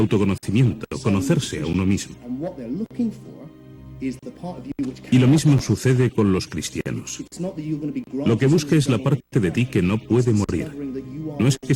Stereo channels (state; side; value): identical; both; correlation 1.00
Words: conocerse a uno mismo. Y lo mismo sucede con los cristianos. Lo que busca es la parte de ti que no puede morir. No es que